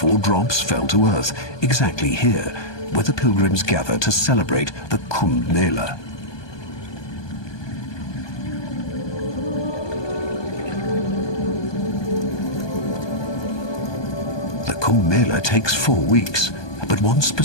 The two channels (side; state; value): right; late; 1.2 ms